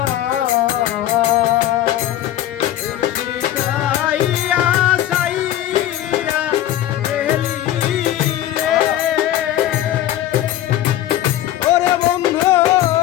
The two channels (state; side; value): quieter; right; 12.8 dB